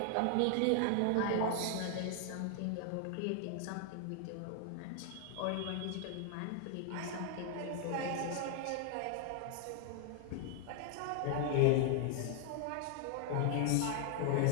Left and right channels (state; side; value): different; both; correlation 0.00